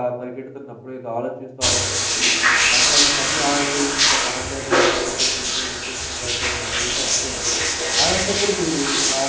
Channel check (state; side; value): identical; both; correlation 1.00